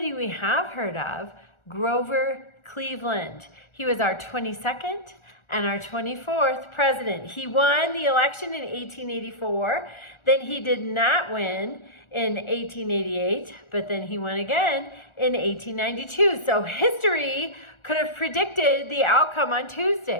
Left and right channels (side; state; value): right; late; 1.4 ms